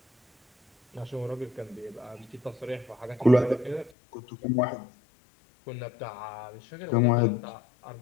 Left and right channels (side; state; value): right; drops out; at 3.9 s